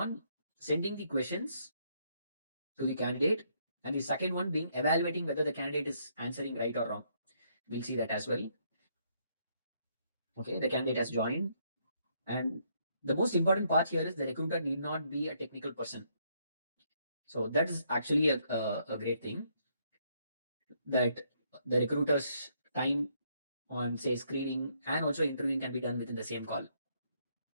sending the questions to the candidate, and the second one being evaluating whether the candidate is answering right or wrong. We'll see that as well. Okay, the candidate has joined, and the most important part here is the recruiter need not be a technical person. So that is actually a great thing that the recruiter's time on say screening and also interviewing can be done within the same call.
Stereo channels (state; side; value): inverted; both; correlation -0.72